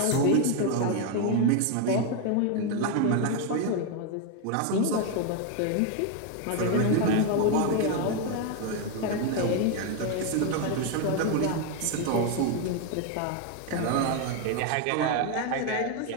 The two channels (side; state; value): both; different; correlation 0.01